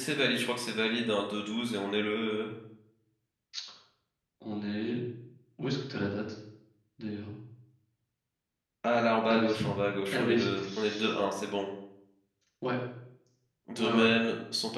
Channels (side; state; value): both; identical; correlation 1.00